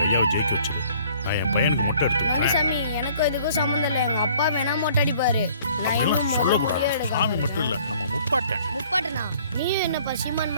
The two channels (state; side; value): inverted; both; correlation -0.56